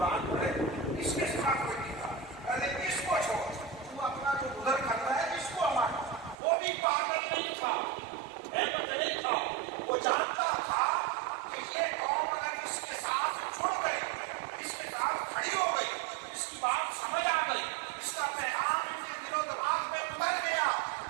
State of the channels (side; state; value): left; drops out; at 6.4 s